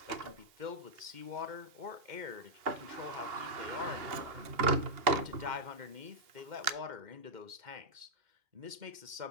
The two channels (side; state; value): left; late; 2.7 ms